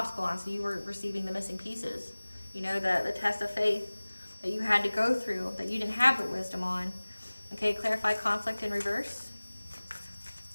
on, so you were receiving the missing pieces. You know, the test of faith that you had to go through, that you didn't have the wisdom on. Okay, clarify conflict in reverse.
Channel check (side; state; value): both; inverted; correlation -1.00